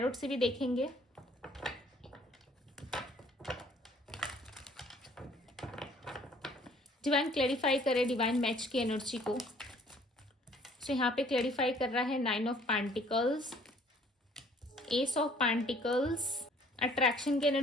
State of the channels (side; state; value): both; normal; correlation 0.57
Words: से भी देखेंगे। डिवाइन क्लैरिफाई करे डिवाइन मैच की एनर्जी को। सो यहाँ पे क्लैरिफाई कर रहा है 9 of pentacles, ace of pentacles. Attraction की